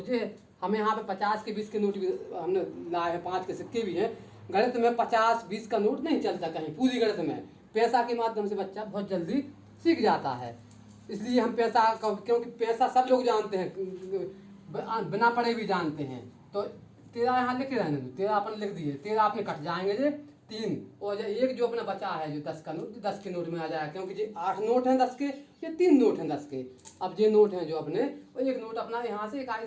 जे हमें यहाँ पे 50 के 20 के नोट भी हमने लाए हैं, 5 के सिक्के भी हैं। गणित में 50 20 का नोट नहीं चलता कहीं, पूरी गणित में पैसा के माध्यम से बच्चा बहुत जल्दी सीख जाता है। इसलिए हम पैसा, क्योंकि पैसा सब लोग जानते हैं, बिना पढ़े भी जानते हैं। तो 13 यहाँ लिख रहने दो, 13 अपन लिख दिए, 13 अपने कट जाएंगे जे 3, और एक जो अपना बचा है जो 10 का नोट, 10 के नोट में आ जाएगा, क्योंकि ये 8 नोट हैं 10के, ये 3 नोट हैं 10 के। अब ये नोट हैं जो अपने, और 1 नोट अपना यहाँ से इकाई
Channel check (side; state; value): both; identical; correlation 1.00